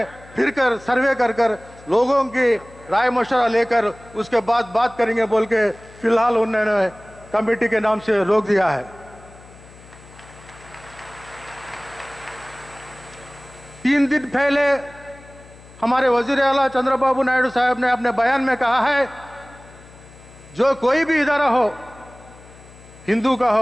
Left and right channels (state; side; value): noise; left; hum, 22 dB below the sound